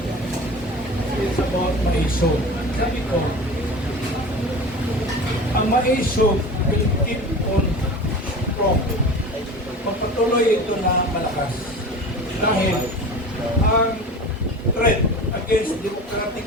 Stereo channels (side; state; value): both; normal; correlation 0.35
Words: It's about Maiso. Sabi ko, ang Maiso will keep on strong. Pagpatuloy ito na malakas. Dahil ang threat against